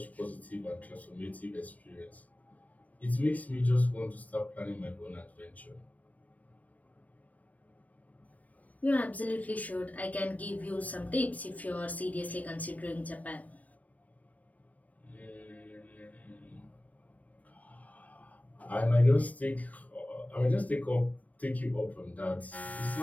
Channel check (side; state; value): right; late; 0.073 ms